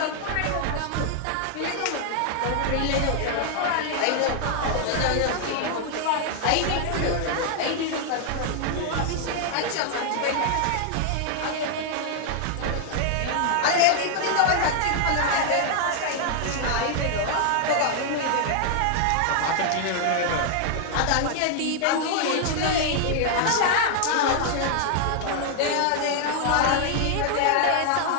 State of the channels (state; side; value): different; both; correlation 0.00